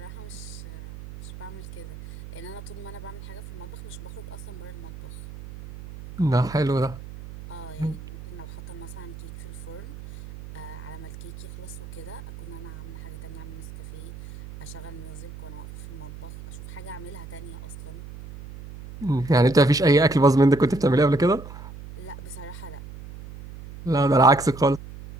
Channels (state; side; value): noise; right; hum, 13 dB below the sound